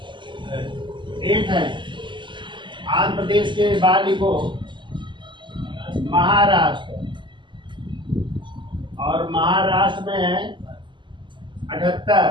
है। आंध्र प्रदेश के बाद लिखो महाराष्ट्र, और महाराष्ट्र में है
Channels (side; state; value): left; late; 0.23 ms